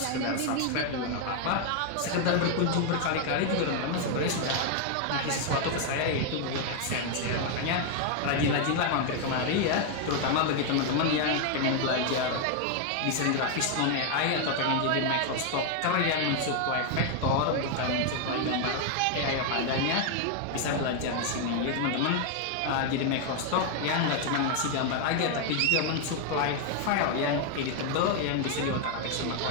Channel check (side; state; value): both; different; correlation 0.00